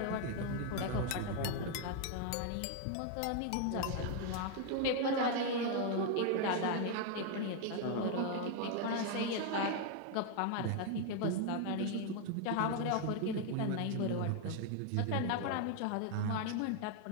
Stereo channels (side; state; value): both; different; correlation 0.00